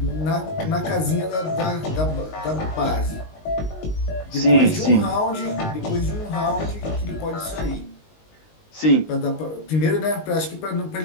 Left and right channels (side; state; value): right; late; 19 ms